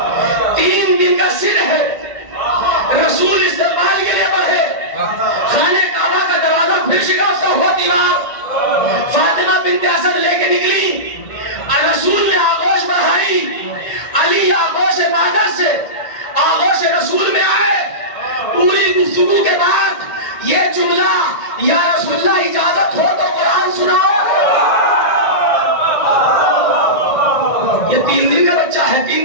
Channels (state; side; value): late; right; 2.1 ms